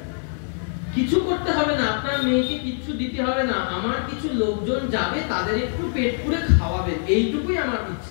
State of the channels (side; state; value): right; silent; digital silence